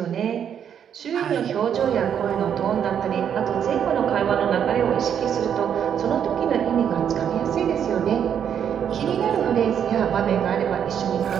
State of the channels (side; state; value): left; quieter; 8.6 dB